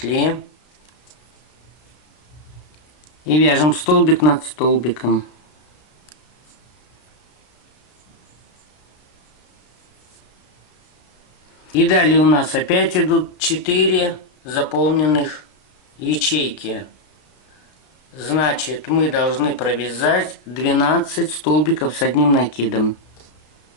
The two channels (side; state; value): right; late; 33 ms